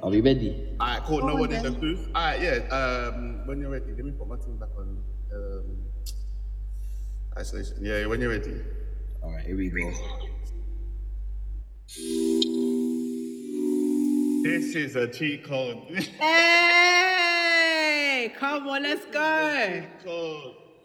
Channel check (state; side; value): identical; both; correlation 1.00